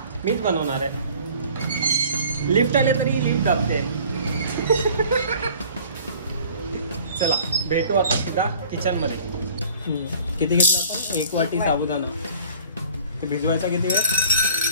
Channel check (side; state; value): both; inverted; correlation -0.50